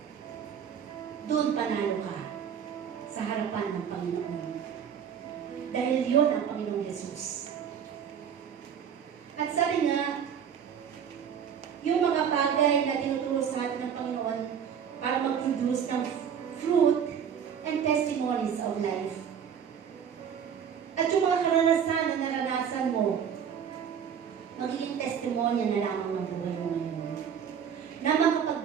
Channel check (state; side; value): quieter; left; 8.0 dB